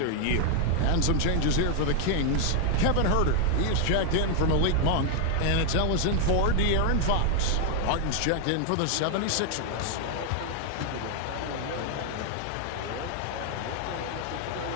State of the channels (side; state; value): both; different; correlation 0.00